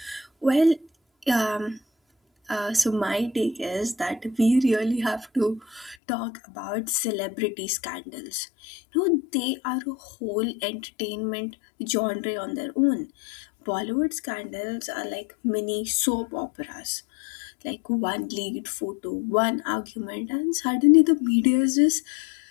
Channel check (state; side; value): drops out; right; at 6.0 s